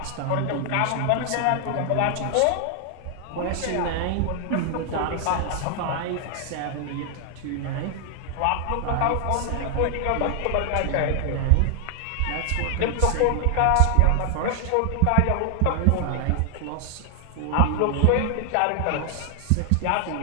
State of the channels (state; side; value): different; both; correlation 0.00